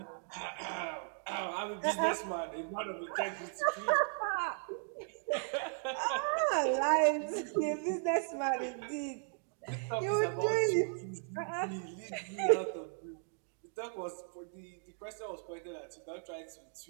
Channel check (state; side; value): silent; left; 54 dB below the other